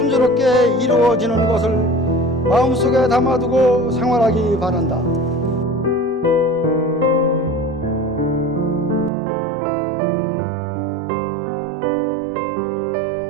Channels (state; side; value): drops out; left; at 9.1 s